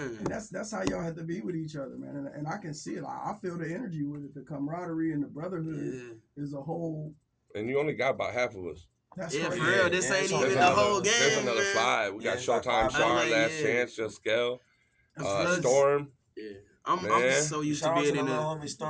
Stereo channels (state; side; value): identical; both; correlation 1.00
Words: And that's how y'all have to be with each other, man. And I can see it. I feel the energy with it. The camaraderie and the brotherhood is a whole. And you only got about half of us. That's for real. This ain't even the whole game. There's another 5. We got Showtime, Sean, Last Chance, Just Scale, Storm. I'm so used to being in the homie